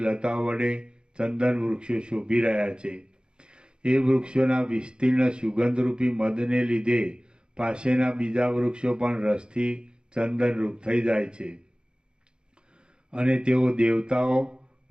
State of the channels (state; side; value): late; left; 0.051 ms